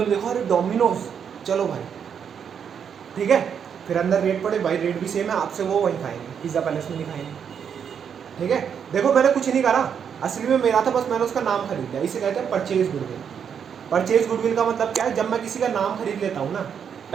ने देखो अरे डोमिनोज चलो भाई, ठीक है। फिर अंदर रेट पड़े भाई, रेट भी सेम है आपसे, वो वहीं खाएंगे, पिज़्ज़ा पैलेस में नहीं खाएंगे, ठीक है। देखो मैंने कुछ नहीं करा, असली में मेरा था बस मैंने उसका नाम खरीद लिया, इसे कहते हैं परचेज गुडविल। परचेज गुडविल का मतलब क्या है, जब मैं किसी का नाम खरीद लेता हूँ ना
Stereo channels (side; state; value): left; quieter; 7.6 dB